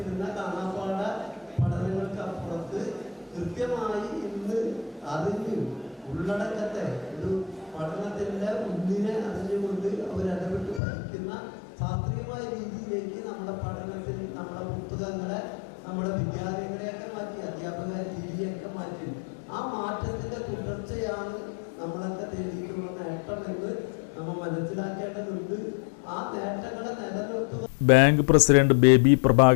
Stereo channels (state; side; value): drops out; right; at 10.8 s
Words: കാണാപ്പാട പഠനങ്ങൾക്ക് അപ്പുറത്ത് കൃത്യമായി ഇന്ന് അറിഞ്ഞു ഉള്ളടക്കത്തെ ഒരു പഠനത്തിൻ്റെ മുന്നിനെ അറിഞ്ഞുകൊണ്ട് അവരിടപെട്ട് പഠിക്കുന്ന ശാസ്ത്രീയമായ രീതിയിലേക്ക് നമ്മുടെ പഠനത്തിൽ നമ്മുടെ പുസ്തകങ്ങളെ നമ്മുടെ വിദ്യാലയങ്ങളെയൊക്കെ മാറ്റി അധ്യാപക രീതിയൊക്കെ മാറ്റി ആ മാറ്റത്തിൻ്റെ തുടർച്ചയാണ് നമ്മളൊക്കെ തേടിയിട്ടുള്ള നേട്ടമെന്ന് നമ്മൾ മനസ്സിലാക്കേണ്ടതുണ്ട്. ആ നേട്ടങ്ങളെ നിലനിർത്തുക. ബാങ്ക് പ്രസിഡന്റ് ബേബി